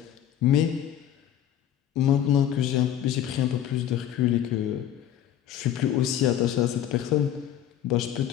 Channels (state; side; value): quieter; right; 10.7 dB